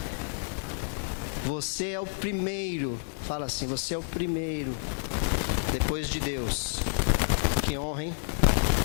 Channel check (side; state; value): right; silent; digital silence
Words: Você é o primeiro. Fala assim, você é o primeiro. Depois de Deus. Que honra, hein?